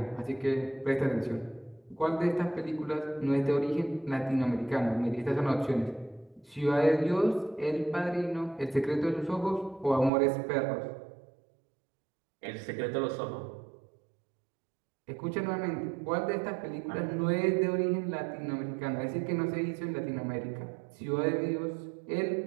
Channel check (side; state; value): left; drops out; at 10.1 s